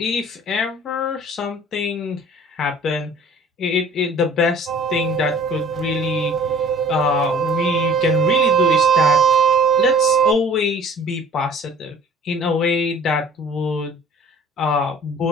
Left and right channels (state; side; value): normal; both; correlation 0.49